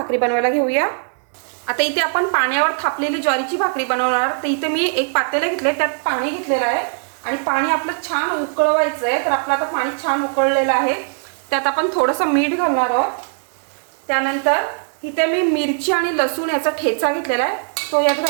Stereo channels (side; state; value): left; silent; digital silence